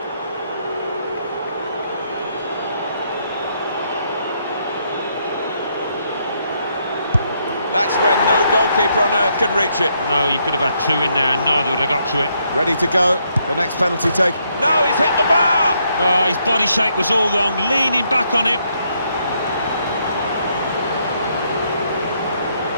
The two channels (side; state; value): both; inverted; correlation -0.74